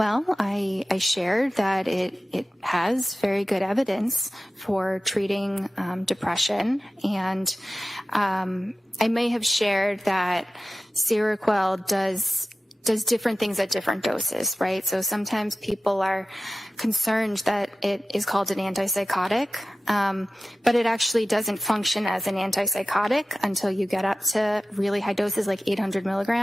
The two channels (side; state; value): both; normal; correlation 0.95